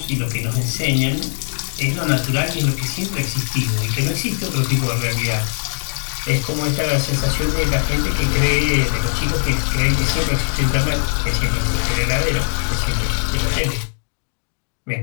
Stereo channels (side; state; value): right; silent; digital silence